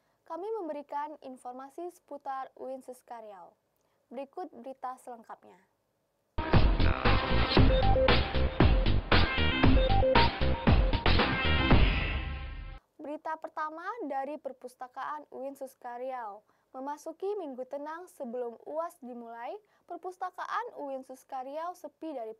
Kami memberikan informasi seputar UIN Suskaryau. Berikut berita selengkapnya. Berita pertama dari Perpustakaan UIN Suskaryau. Memasuki Minggu Tenang sebelum UAS dimulai, Perpustakaan UIN Suskaryau sepi dari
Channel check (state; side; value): identical; both; correlation 1.00